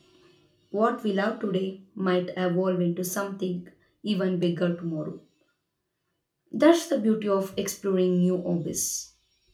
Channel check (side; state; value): both; identical; correlation 1.00